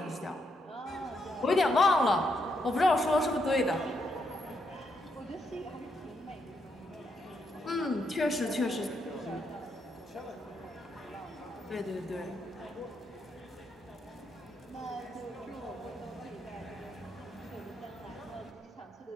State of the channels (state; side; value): normal; both; correlation 0.78